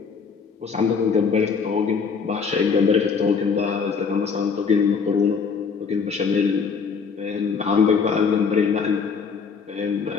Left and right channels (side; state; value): right; quieter; 5.6 dB